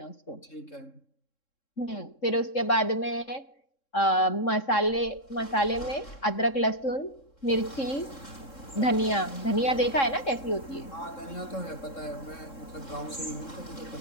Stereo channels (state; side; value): late; right; 3.7 ms